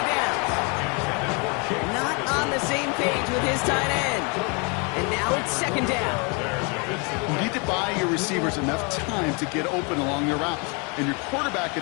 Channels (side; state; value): right; quieter; 32.7 dB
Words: downs. Not on the same page with his tight end. And now it's 2nd down. You need to buy your receivers enough time to get open along their route, and your quarterback